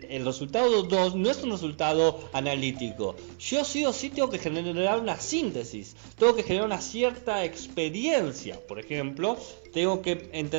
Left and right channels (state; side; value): silent; left; 59 dB below the other